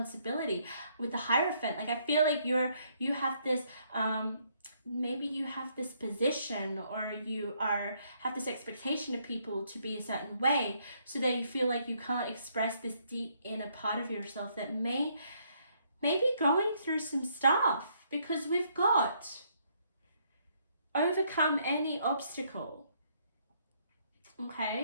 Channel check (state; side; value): inverted; both; correlation -0.70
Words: with the Hierophant. Like, I feel like you have this, maybe you have this position, or you have this expectation of people to be a certain way, so that you feel like you can't express this deep inner part of yourself that may be going through some stuff, because we've got overcome any obstacle.